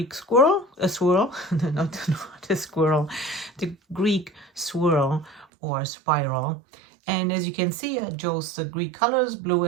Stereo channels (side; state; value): left; drops out; at 5.5 s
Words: swirl, not a squirrel, the Greek swirl or spiral. And as you can see, I chose the Greek colors, blue